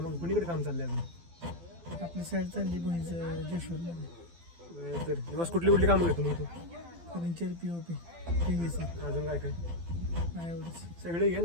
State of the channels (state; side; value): late; left; 12 ms